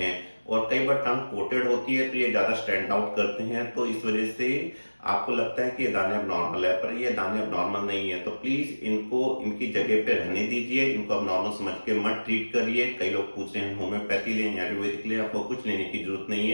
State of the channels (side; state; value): both; inverted; correlation -1.00